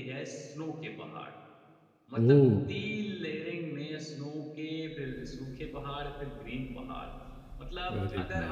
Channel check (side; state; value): both; identical; correlation 1.00